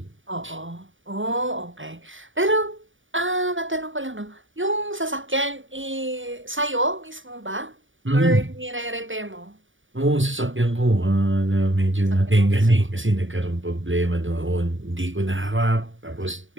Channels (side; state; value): left; late; 0.57 ms